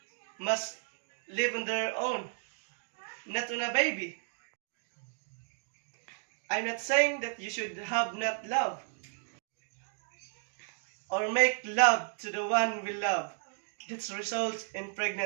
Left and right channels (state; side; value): silent; left; 55 dB below the other